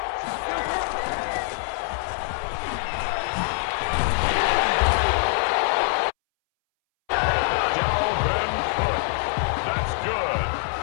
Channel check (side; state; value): right; silent; 62 dB below the other